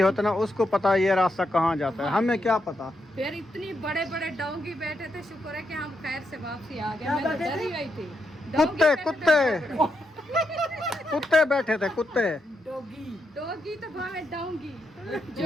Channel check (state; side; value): normal; both; correlation 0.82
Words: ना, उसको पता है ये रास्ता कहाँ जाता है, हमें क्या पता। फिर इतनी बड़े बड़े डोंगी बैठे थे, शुक्र है कि हम खैर से वापसी आ गए, मैं तो डर ही गई थी। डोंगी कुत्ते बैठे थे कुत्ते बड़े-बड़े। कुत्ते बैठे थे, कुत्ते। डोगी तो भावे डोंगी,